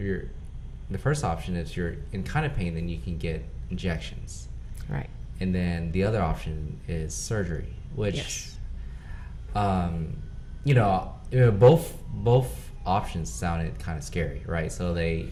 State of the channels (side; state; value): both; identical; correlation 1.00